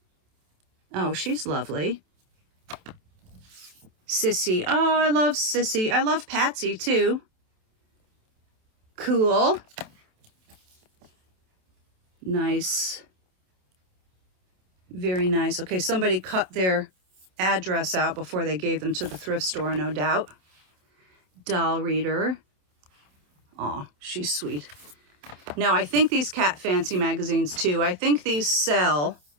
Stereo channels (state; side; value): late; left; 27 ms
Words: Oh, she's lovely. Sissy. Oh, I love Sissy. I love Patsy, too. Cool. Nice. Very nice. Okay, somebody cut their address out before they gave them to the thrift store, no doubt. Doll reader. Aw, she's sweet. Now, I think these Cat Fancy magazines, too, I think these sell.